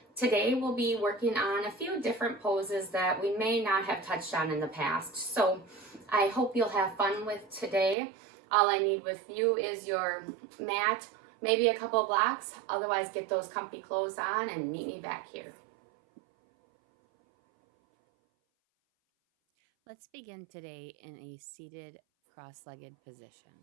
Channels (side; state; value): left; drops out; at 8.0 s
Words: Today we'll be working on a few different poses that we may not have touched on in the past. So I hope you'll have fun with today. All I need with you is your mat, maybe a couple blocks. Otherwise, get those comfy clothes on and meet me back here. Let's begin today in a seated cross-legged position.